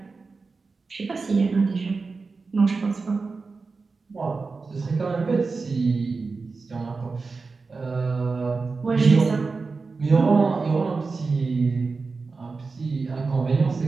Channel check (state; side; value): quieter; left; 4.3 dB